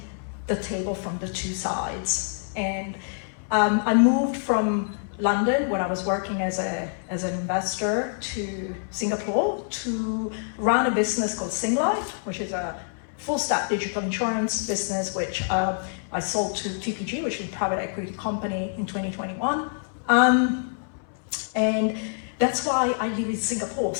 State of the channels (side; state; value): right; silent; 61 dB below the other